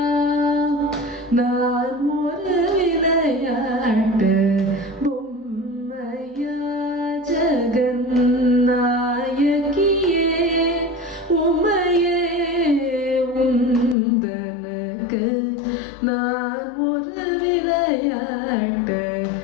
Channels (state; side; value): drops out; right; at 14.0 s